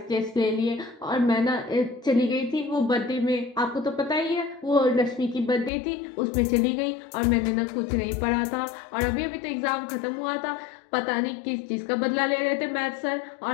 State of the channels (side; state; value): right; drops out; at 5.7 s